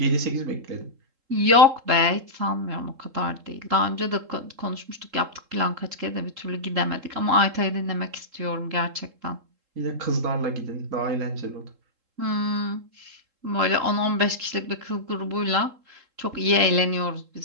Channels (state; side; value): late; left; 3.7 ms